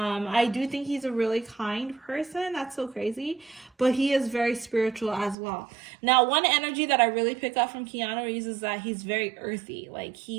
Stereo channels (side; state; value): left; drops out; at 5.4 s